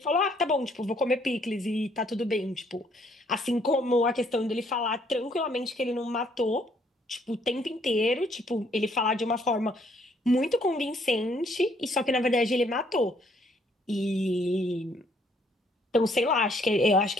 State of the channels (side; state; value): both; normal; correlation 0.66